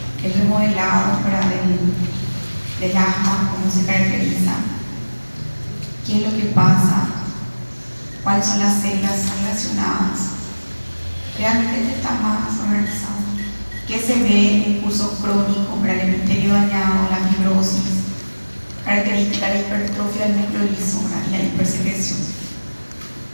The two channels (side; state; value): both; inverted; correlation -1.00